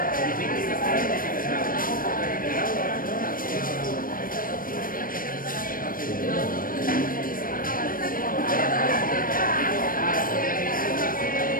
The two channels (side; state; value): right; late; 0.41 ms